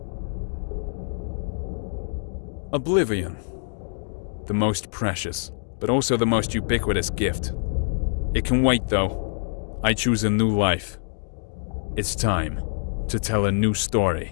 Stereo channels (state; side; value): silent; right; digital silence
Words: Oblivion. The most precious, but also the most ubiquitous gift. It can wait though. I choose a new life. It's time to tell a new